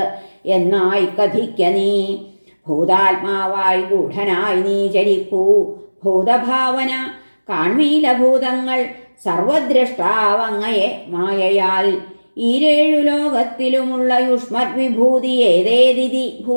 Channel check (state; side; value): inverted; both; correlation -1.00